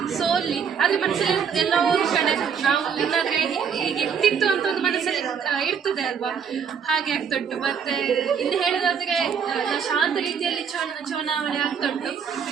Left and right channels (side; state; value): left; quieter; 7.0 dB